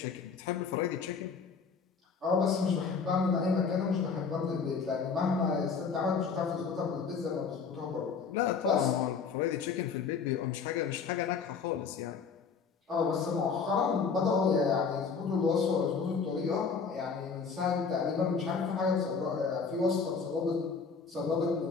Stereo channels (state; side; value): quieter; right; 5.5 dB